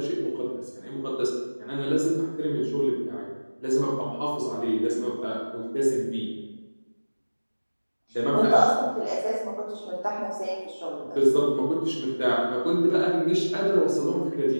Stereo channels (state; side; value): inverted; both; correlation -1.00